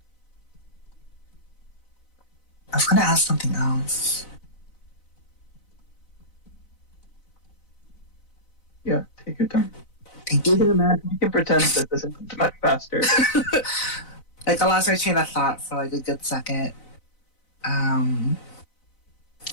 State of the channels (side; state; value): right; late; 4.0 ms